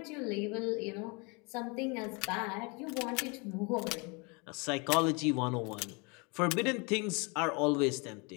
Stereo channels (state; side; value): quieter; right; 30.7 dB